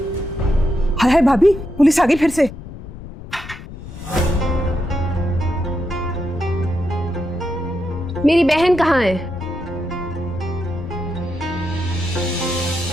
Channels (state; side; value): noise; left; rumble, 13 dB below the sound